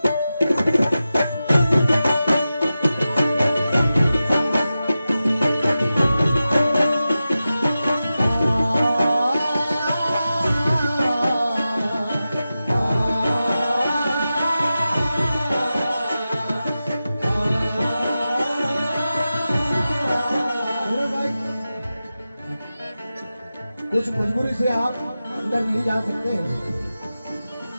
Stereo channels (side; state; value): both; inverted; correlation -0.93